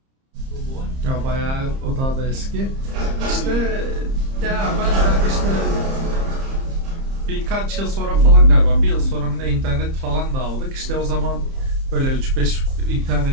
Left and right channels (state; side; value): late; left; 30 ms